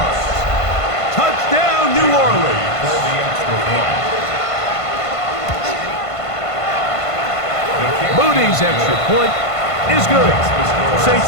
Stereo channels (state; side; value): late; right; 1.5 ms